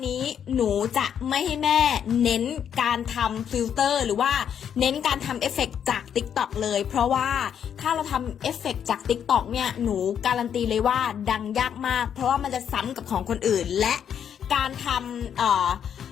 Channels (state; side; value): quieter; right; 8.5 dB